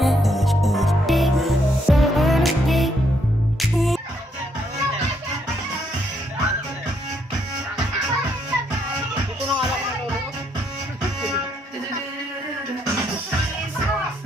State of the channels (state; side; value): normal; both; correlation 0.74